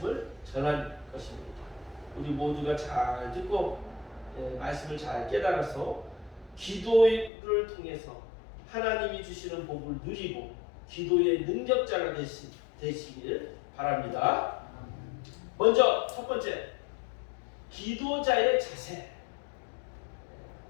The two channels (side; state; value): right; drops out; at 7.3 s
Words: 전할 것입니다. 우리 모두가 잘 듣고 말씀을 잘 깨달아서 기도를 통해서 하나님이 주시는 복을 누리고 기도의 능력자가 되시길 바랍니다. 먼저 첫 번째, 기도자의 자세.